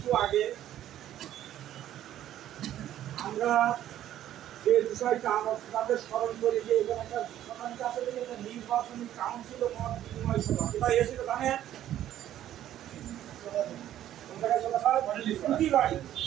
আগে আমরা যে বিষয়টা আমাদের স্মরণ করি যে এখানে একটা সরকারি কাছে থেকে একটা নির্বাচনী কাউন্সিল মত বিনিময় সভা কোথায় এসেছিল জানেন?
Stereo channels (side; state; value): left; quieter; 12.1 dB